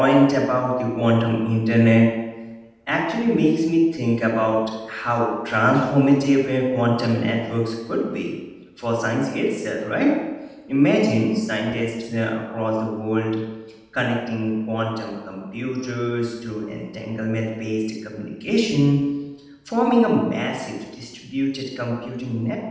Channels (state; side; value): identical; both; correlation 1.00